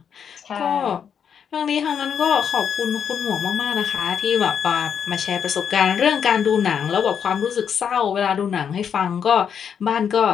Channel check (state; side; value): quieter; right; 7.7 dB